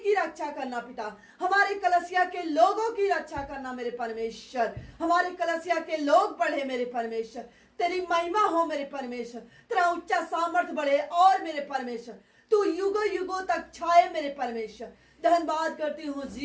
रक्षा करना पिता, हमारे कलसिया के लोगों की रक्षा करना मेरे परमेश्वर, हमारे कलसिया के लोग बढ़े मेरे परमेश्वर। तेरी महिमा हो मेरे परमेश्वर, तेरा ऊंचा सामर्थ्य बढ़े और मेरे परमेश्वर तू युगों युगों तक छाए मेरे परमेश्वर। धन्यवाद करती हूँ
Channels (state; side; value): identical; both; correlation 1.00